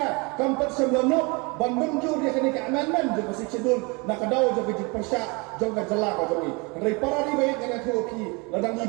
kampat semlono ban munjur ya kini ka amendment jong si schedule na kadau jong ki persya jong ka jala ka jong ri para ri baik ngana thu ki ladang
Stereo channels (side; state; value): left; quieter; 28.8 dB